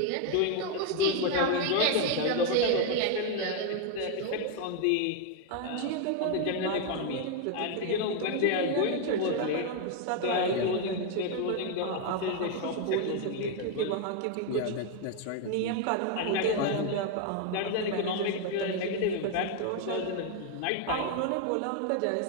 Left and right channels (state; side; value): different; both; correlation 0.01